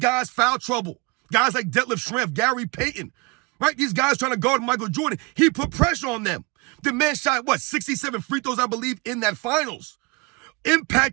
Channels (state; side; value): quieter; left; 26.4 dB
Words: foul trouble. Guys like Detlef Schrempf, Gary Payton, right? These guys trying to guard Michael Jordan. He put pressure on them. The man shot, 67 free throws, I believe, in that finals,